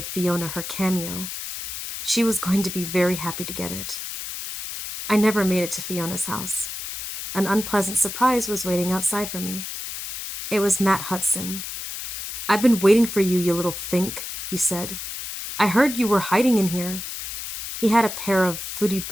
Fiona her cameo. She was going to be very happy to get it. I never made it to Fiona's house. An unpleasant surprise was waiting outside for me. It was Matt Hudson. "I've been waiting for you, you little fink," he said. "I heard you were hiding in here." He had a pair of footy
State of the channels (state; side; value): noise; left; hiss, 7 dB below the sound